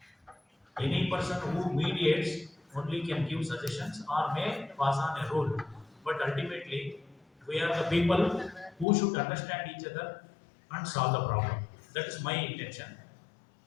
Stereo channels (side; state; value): right; drops out; at 8.8 s